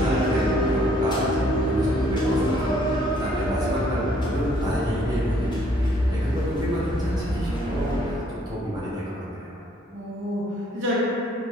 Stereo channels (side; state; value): both; normal; correlation 0.64